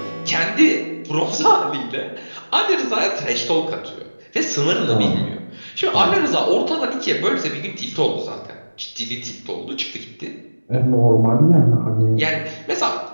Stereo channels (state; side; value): inverted; both; correlation -1.00